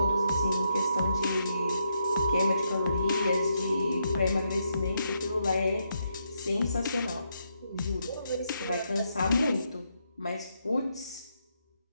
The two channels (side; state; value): both; inverted; correlation -0.79